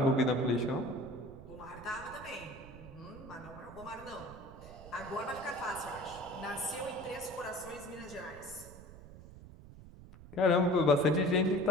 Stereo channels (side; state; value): right; noise; rumble, 17 dB below the sound